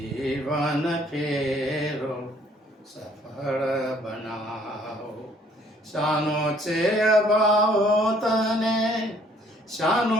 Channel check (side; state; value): both; normal; correlation 0.61